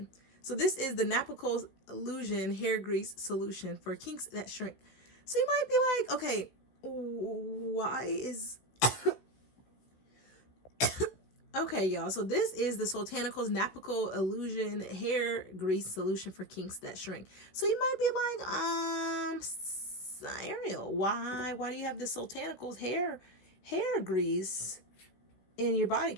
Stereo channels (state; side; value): late; right; 15 ms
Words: So this is the Naples Illusion Hair Grease Solution for kinks that shrink. So you might be like, okay, why is... Okay, y'all, so this is the Soultanicals Naples Illusion Hair Grease Solution for kinks that shrink. So you might be like, Ariel, why do you have the Soultanicals hair grease in your body